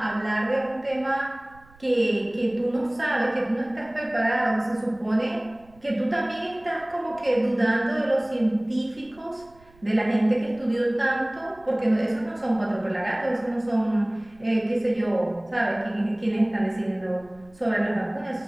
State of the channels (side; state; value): right; noise; rumble, 27 dB below the sound